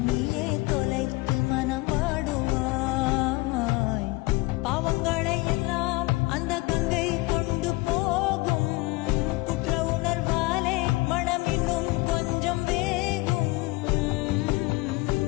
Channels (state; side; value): quieter; right; 23.3 dB